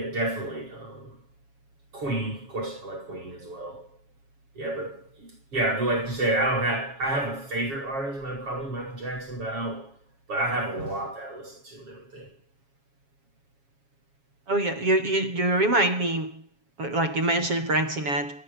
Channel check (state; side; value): late; left; 7.3 ms